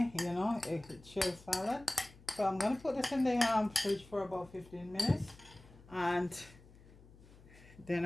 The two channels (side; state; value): left; noise; hum, 22 dB below the sound